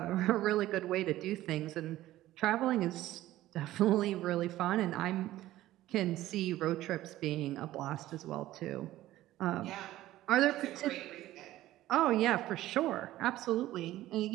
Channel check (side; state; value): left; quieter; 15.2 dB